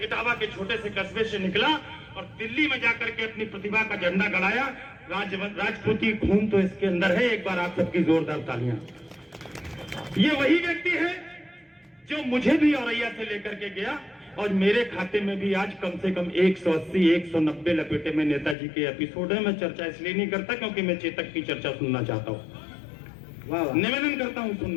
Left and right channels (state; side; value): drops out; right; at 18.6 s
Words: इटावा के छोटे से कस्बे से निकला और दिल्ली में जाकर के अपनी प्रतिभा का झंडा गड़ाया। राजपूती खून तो इसके अंदर है। एक बार आप सबकी जोरदार तालियां। ये वही व्यक्ति है जो मुझे भी औरैया से लेकर के गया और मेरे खाते में भी आज कम से कम 180 190 लपेटे में नेताजी के एपिसोड है। मैं चर्चा इसलिए नहीं करता क्योंकि मैं चेतक की चर्चा सुनना चाहता हूं। निवेदन करता हूं